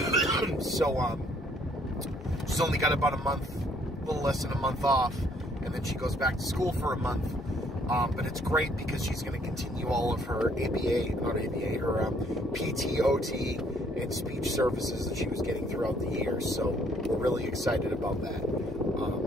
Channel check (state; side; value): normal; both; correlation 0.64